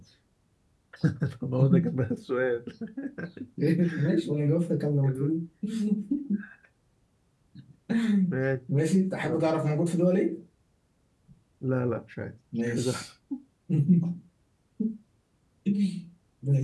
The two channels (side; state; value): both; identical; correlation 1.00